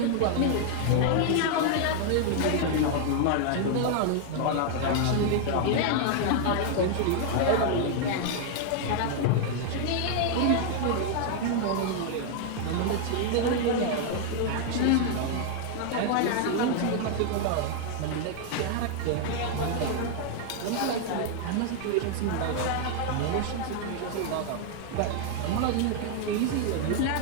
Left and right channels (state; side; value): different; both; correlation 0.00